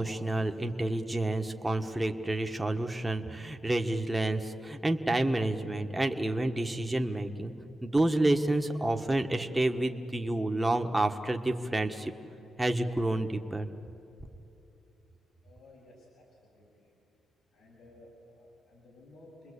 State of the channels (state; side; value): normal; both; correlation 0.95